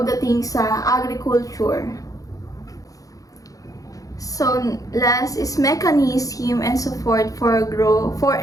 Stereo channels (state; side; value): late; right; 0.17 ms